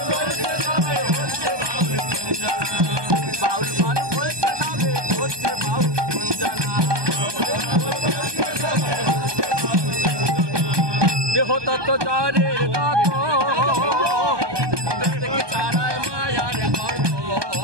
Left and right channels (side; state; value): left; late; 1.2 ms